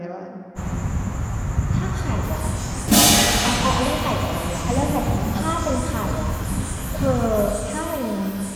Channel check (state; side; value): identical; both; correlation 1.00